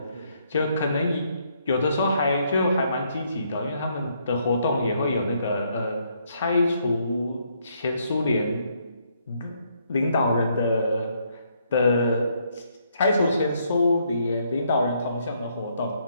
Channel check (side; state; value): both; inverted; correlation -0.72